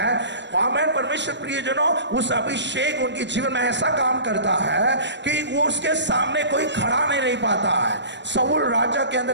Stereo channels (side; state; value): left; late; 0.52 ms